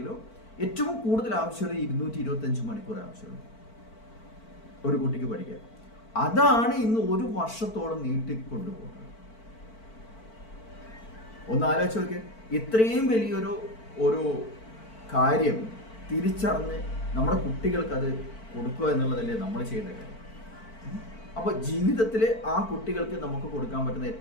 ഏറ്റവും കൂടുതൽ ആവശ്യമുള്ളത് 225 മണിക്കൂർ ആവശ്യമുള്ളൂ ഒരു കുട്ടിക്ക് പഠിക്കാൻ. അതാണ് ഇന്ന് 1 വർഷത്തോളം നീട്ടിക്കൊണ്ടുപോകുന്നത്. ഒന്ന് ആലോചിച്ച് നോക്കിയേ, ഇത്രയും വലിയൊരു കാര്യം തിരിച്ചറിഞ്ഞ് നമ്മുടെ കുട്ടികൾക്ക് അത് കൊടുക്കുക എന്നുള്ളതല്ലേ നമ്മൾ ചെയ്യുന്ന കാര്യം. അപ്പോൾ ജീവിതത്തിൽ ആ കുട്ടികൾക്ക് നമുക്ക് കൊടുക്കാൻ പറ്റുന്ന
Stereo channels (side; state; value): right; late; 4.5 ms